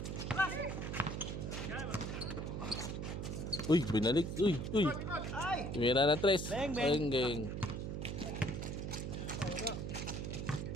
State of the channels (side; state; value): right; noise; hum, 4 dB below the sound